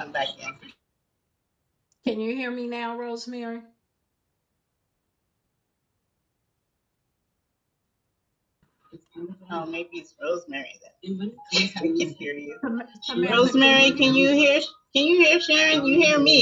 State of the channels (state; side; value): identical; both; correlation 1.00